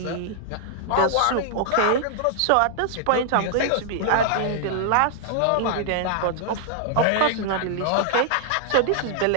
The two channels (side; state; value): both; different; correlation -0.01